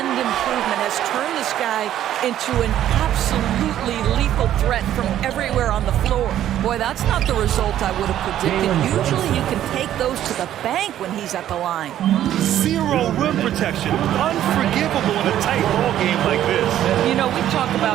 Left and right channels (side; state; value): left; quieter; 11.8 dB